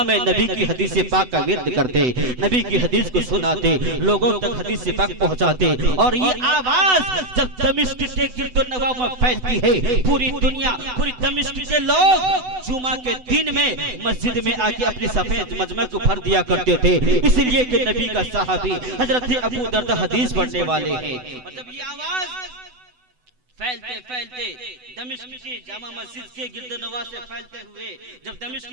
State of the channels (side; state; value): left; late; 8.0 ms